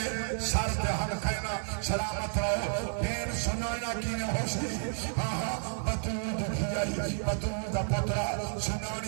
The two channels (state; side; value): silent; left; 57 dB below the other